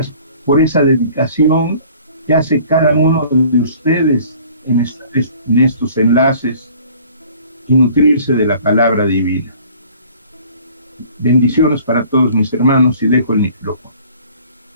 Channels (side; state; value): both; inverted; correlation -0.52